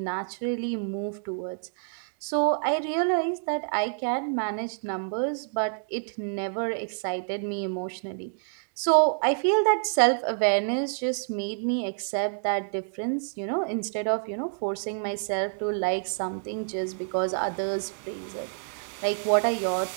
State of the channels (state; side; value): silent; left; digital silence